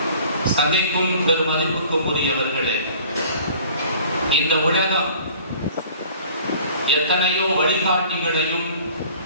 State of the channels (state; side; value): inverted; both; correlation -0.50